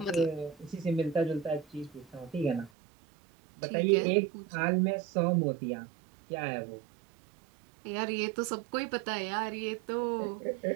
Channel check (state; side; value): drops out; left; at 2.7 s